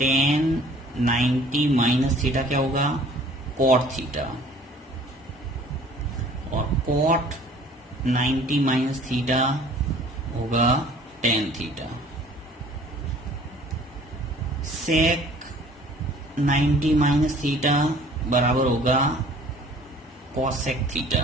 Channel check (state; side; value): normal; both; correlation 0.52